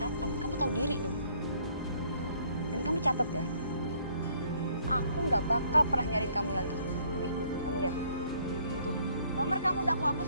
kamu tahu diri dong. Dan kamu catat ya, aku nggak bakal pernah nyariin kamu lagi. Nih, kamu lihat. Tuh, nomor kamu udah aku hapus,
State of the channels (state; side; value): inverted; both; correlation -0.64